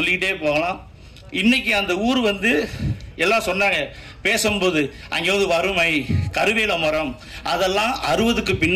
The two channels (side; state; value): both; identical; correlation 1.00